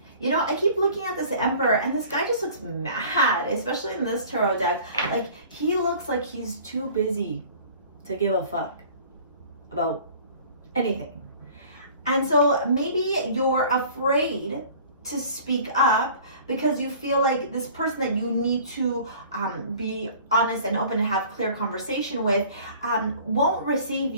You know, I keep looking at this Emperor, and this guy just looks mad, especially in this tarot deck. Like, he looks like he's too busy to give a fuck about anything. And so maybe you're afraid to speak up because you feel like this person that you need to be honest and open and have clear conversation with won't receive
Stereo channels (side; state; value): both; inverted; correlation -0.48